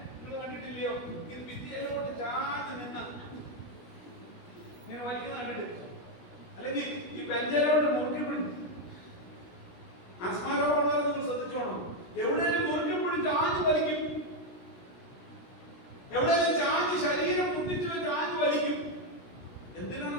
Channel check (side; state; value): right; late; 17 ms